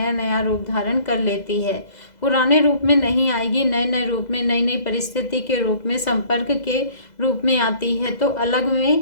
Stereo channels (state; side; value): late; right; 2.0 ms